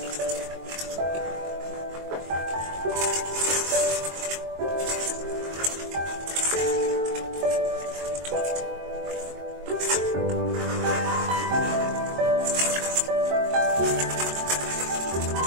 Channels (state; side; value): late; left; 22 ms